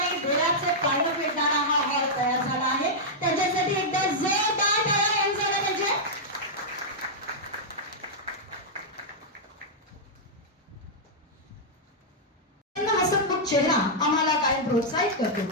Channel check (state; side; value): normal; both; correlation -0.07